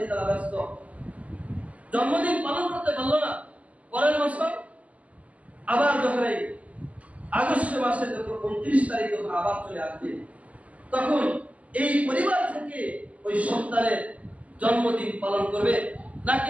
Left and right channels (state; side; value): late; left; 0.070 ms